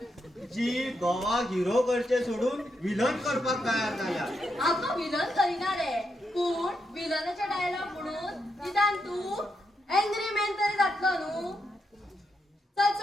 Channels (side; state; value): both; normal; correlation 0.82